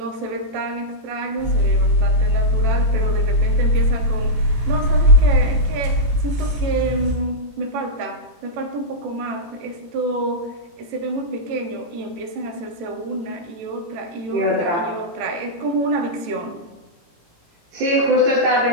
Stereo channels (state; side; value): late; left; 18 ms